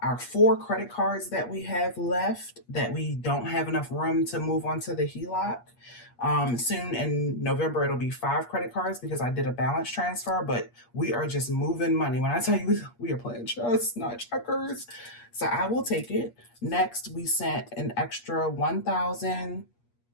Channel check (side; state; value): right; late; 8.4 ms